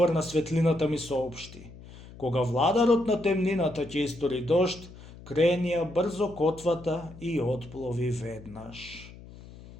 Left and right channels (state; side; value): noise; left; hum, 18 dB below the sound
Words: на светлината, ми соопшти: кога владарот на темнината ќе истори дожд, кренија брзо котвата и отплови веднаш.